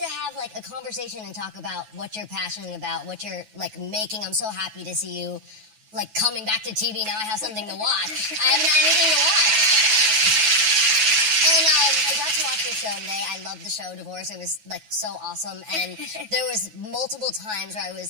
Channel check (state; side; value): late; left; 9.3 ms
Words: have like a conversation and talk about what you're passionate about, what you're like making. I'm so happy to see you like coming back to TV. Now I have something to watch. I haven't had anything to watch. And I got to watch your show today. I loved the show, Divorce. It was like so awesome. And there was multiple times where I